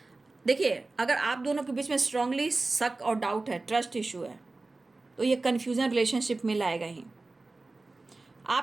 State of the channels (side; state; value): left; quieter; 3.3 dB